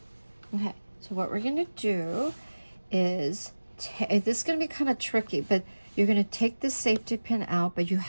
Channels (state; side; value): inverted; both; correlation -1.00